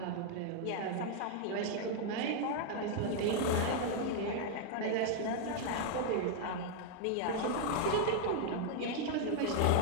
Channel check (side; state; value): both; different; correlation 0.00